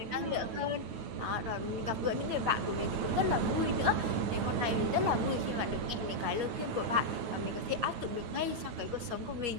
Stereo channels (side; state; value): left; late; 9.0 ms